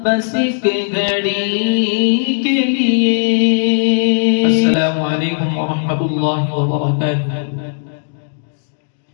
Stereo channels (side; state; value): right; silent; digital silence